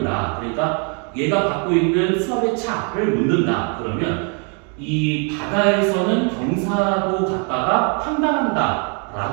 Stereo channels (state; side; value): quieter; left; 37.3 dB